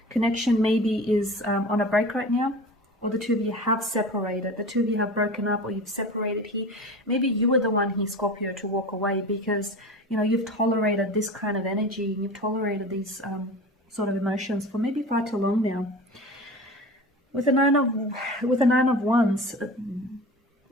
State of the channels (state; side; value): normal; both; correlation 0.34